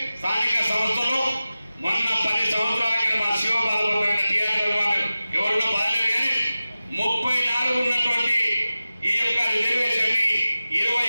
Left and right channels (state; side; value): inverted; both; correlation -0.96